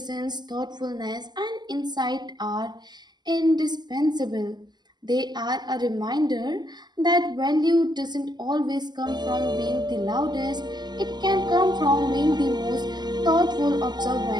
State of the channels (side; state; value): left; late; 0.21 ms